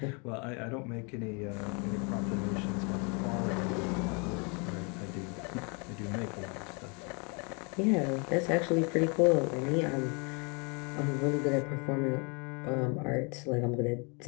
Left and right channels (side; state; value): right; quieter; 33.7 dB